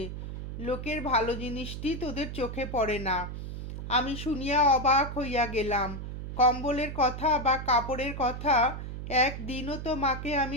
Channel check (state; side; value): noise; right; hum, 7 dB below the sound